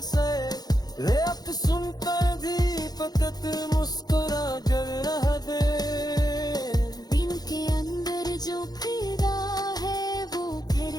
से, रेत सुनकर भी फकत मुस्कुरा कर रह दे। दिल के अंदर जो फिदा है वो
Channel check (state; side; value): late; right; 0.19 ms